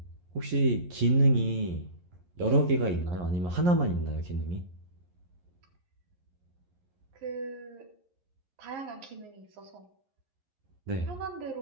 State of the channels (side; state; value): left; late; 11 ms